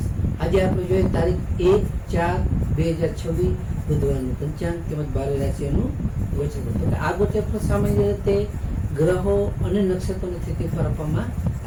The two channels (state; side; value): identical; both; correlation 1.00